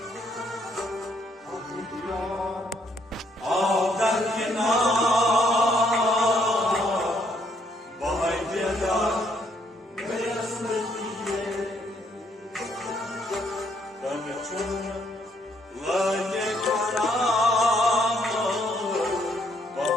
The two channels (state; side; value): normal; both; correlation 0.70